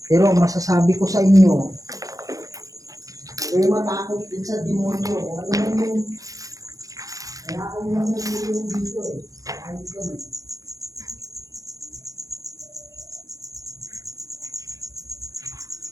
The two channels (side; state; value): left; late; 0.17 ms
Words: Pero masasabi ko sa inyo, huwag matakot din sa demonyo. Kung ano man yung kaya ako yung nangulong dito eh. Ayos yan eh.